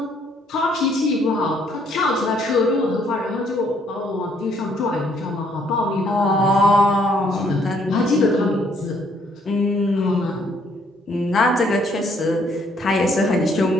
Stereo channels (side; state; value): both; normal; correlation 0.66